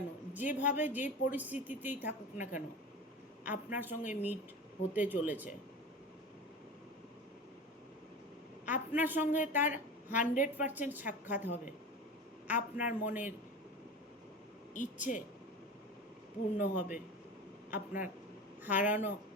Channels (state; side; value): normal; both; correlation 0.30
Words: যেভাবে যে পরিস্থিতিতেই থাকুক না কেন, আপনার সঙ্গে মিট হতে চলেছে। আপনার সঙ্গে তার 100% সাক্ষাৎ হবে। আপনার মনের ইচ্ছে পূর্ণ হবে। আপনার হারানো